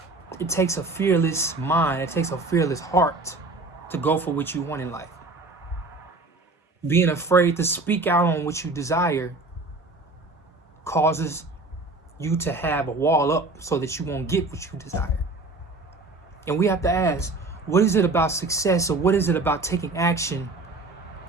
it takes a fearless mind, it takes a fearless heart to go for what you want in life. Being afraid to speak out on what you desire causes you to have a wall up so that you won't get what you desire. And we have to ask, what is it about success or what is it about taking action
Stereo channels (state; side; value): quieter; left; 3.2 dB